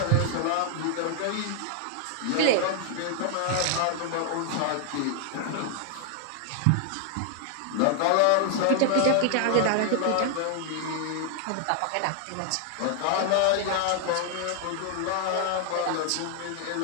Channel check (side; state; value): both; different; correlation 0.00